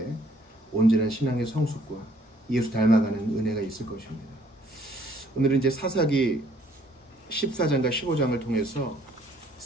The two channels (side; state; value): both; normal; correlation 0.62